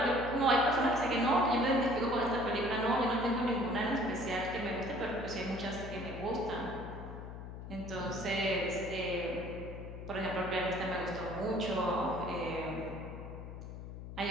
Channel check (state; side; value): noise; left; hum, 10 dB below the sound